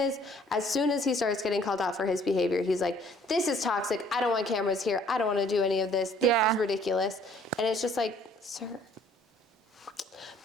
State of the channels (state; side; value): normal; both; correlation 0.58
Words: he starts getting called out for his behavior, he's like, this is toxic. I don't want cameras here. I don't want to do any of this. This is ridiculous. And it's just like, sir.